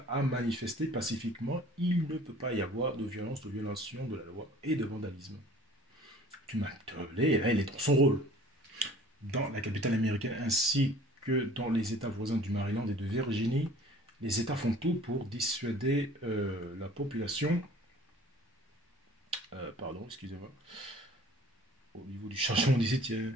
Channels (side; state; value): both; normal; correlation 0.49